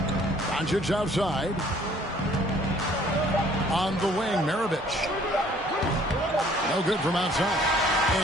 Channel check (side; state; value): both; normal; correlation 0.58